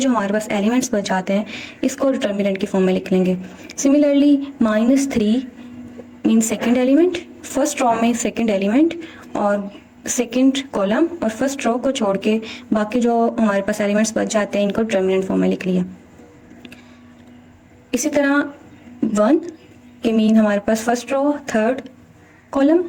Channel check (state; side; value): identical; both; correlation 1.00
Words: हमारे पास एलिमेंट्स बच जाते हैं इसको डिटर्मिनेंट की फॉर्म में लिख लेंगे। Similarly -3 mean second element, first row में सेकेंड एलिमेंट और सेकेंड कॉलम और फर्स्ट रो को छोड़ के बाकी जो हमारे पास एलिमेंट्स बच जाते हैं इनको डिटर्मिनेंट फॉर्म में लिख लिया। इसी तरह 1 के मीन हमारे पास फर्स्ट रो थर्ड कॉलम,